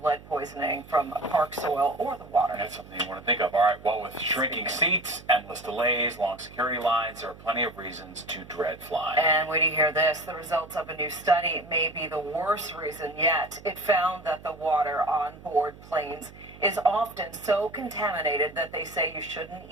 lead poisoning from park soil or the water. That's something you want to think of. All right, well, with shrinking seats, endless delays, long security lines, there are plenty of reasons to dread flying. And wait to hear this. The results of a new study may be the worst reason yet. It found that the water on board planes is often so contaminated that they say you shouldn't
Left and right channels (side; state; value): right; noise; hum, 19 dB below the sound